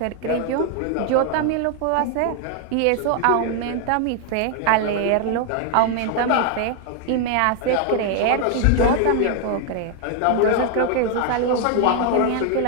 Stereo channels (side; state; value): both; different; correlation 0.00